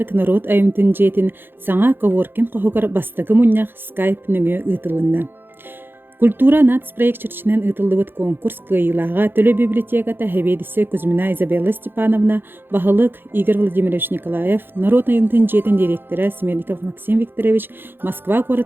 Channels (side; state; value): left; late; 0.10 ms